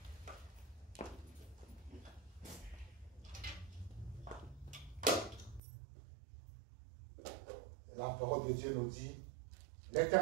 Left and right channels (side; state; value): left; drops out; at 5.6 s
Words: La parole de Dieu nous dit,